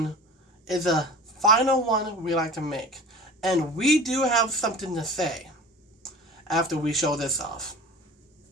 is a final one we like to make. And we do have something to say after we show this off.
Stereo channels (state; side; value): normal; both; correlation 0.38